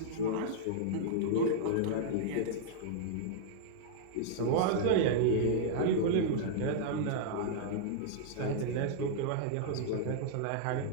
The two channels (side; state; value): both; different; correlation -0.01